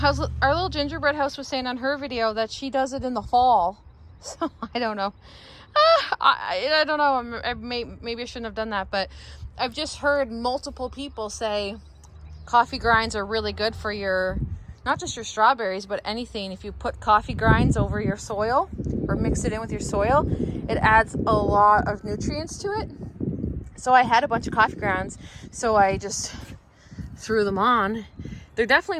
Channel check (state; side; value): identical; both; correlation 1.00